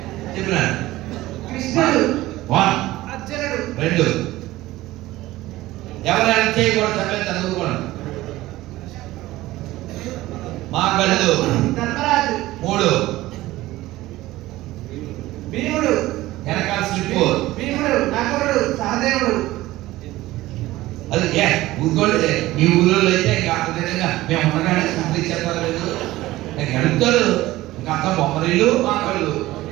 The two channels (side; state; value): left; quieter; 17.2 dB